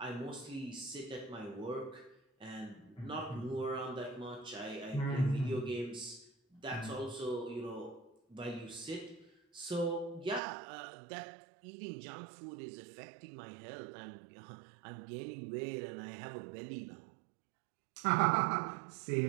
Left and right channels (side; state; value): left; drops out; at 10.4 s